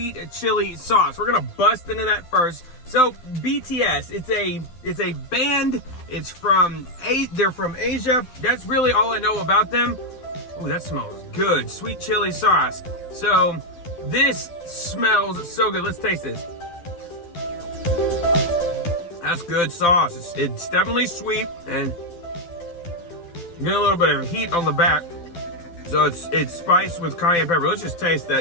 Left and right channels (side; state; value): right; late; 12 ms